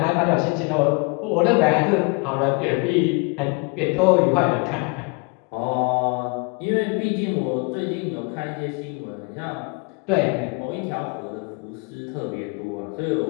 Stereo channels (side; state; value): right; quieter; 31.5 dB